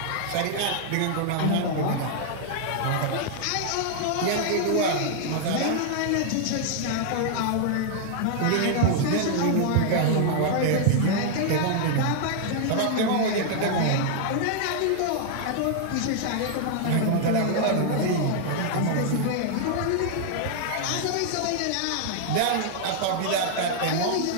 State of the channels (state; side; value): different; both; correlation -0.01